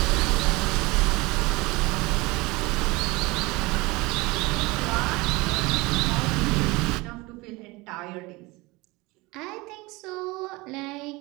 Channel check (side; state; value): left; quieter; 23.2 dB